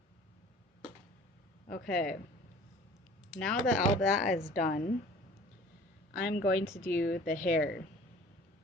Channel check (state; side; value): normal; both; correlation 0.47